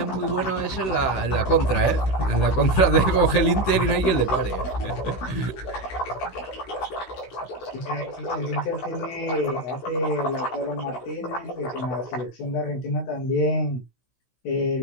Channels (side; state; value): right; late; 16 ms